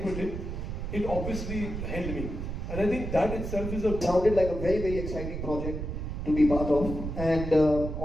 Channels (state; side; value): noise; right; rumble, 5 dB below the sound